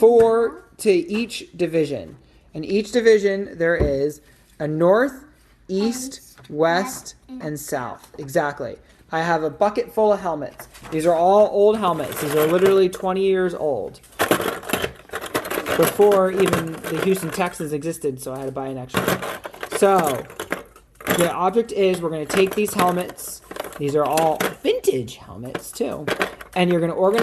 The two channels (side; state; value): both; identical; correlation 1.00